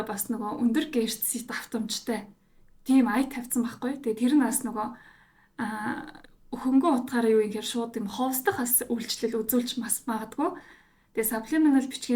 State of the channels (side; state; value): both; identical; correlation 1.00